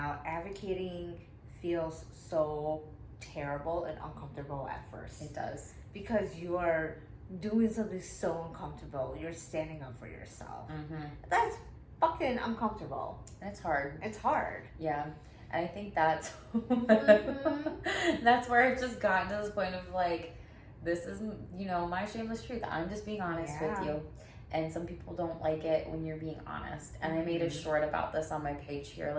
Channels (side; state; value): both; identical; correlation 1.00